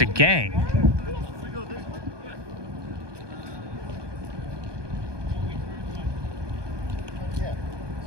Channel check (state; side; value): late; left; 1.2 ms